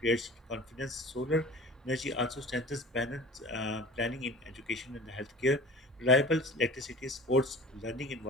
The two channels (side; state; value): both; normal; correlation 0.41